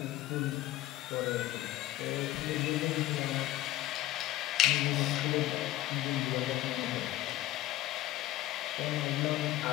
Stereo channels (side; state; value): right; quieter; 15.3 dB